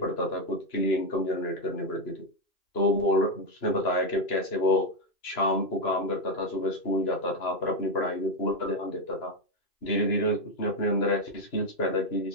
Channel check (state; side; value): late; right; 2.9 ms